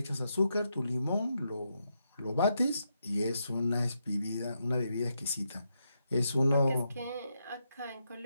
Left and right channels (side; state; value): both; inverted; correlation -0.82